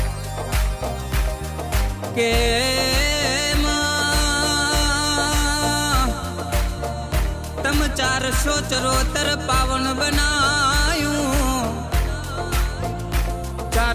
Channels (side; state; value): both; identical; correlation 1.00